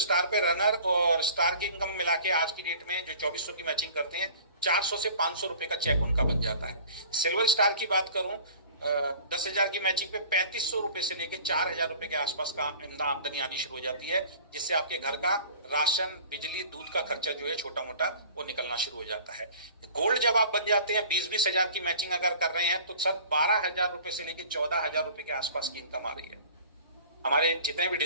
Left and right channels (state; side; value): inverted; both; correlation -0.46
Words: पे रनर और स्टार की इनकम मिला के आज की डेट में जो 2400 की मैचिंग करते हैं 400 से 500 रुपए का चेक उनका बन जाता है। सिल्वर स्टार की बात करूं 10,000 की मैचिंग पे 3500 रुपए से लेके 4,000 रुपए के आसपास का आमदनी आनी शुरू हो जाती है, जिससे आपके घर का राशन, बिजली, दूध का खर्चा जो है छोटा मोटा वो निकलना शुरू हो जाता है। गोल्ड जब आप बन जाते हैं, 20-20 हजार की मैचिंग अगर कर रहे हैं, तो सर 12,000 रुपए से लेके 14,000 रुपए के आसपास की इनकम आ रही है। हमारे जितने भी